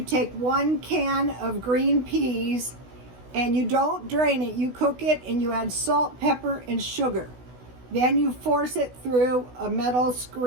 take 1 can of green peas and you don't drain it. You cook it and you add salt, pepper, and sugar. Then you force it through a metal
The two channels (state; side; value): late; left; 16 ms